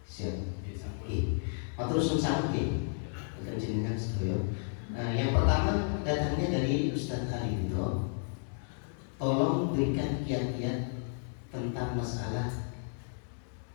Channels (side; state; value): right; silent; digital silence